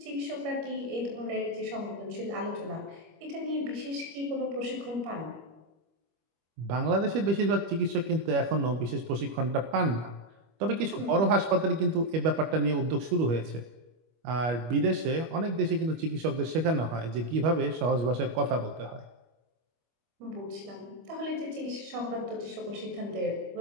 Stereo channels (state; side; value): late; left; 25 ms